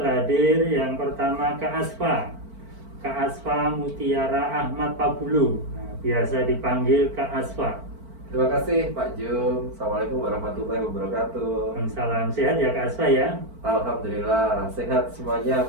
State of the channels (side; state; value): left; late; 4.5 ms